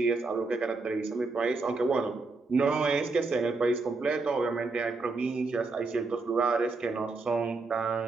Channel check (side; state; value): left; quieter; 3.7 dB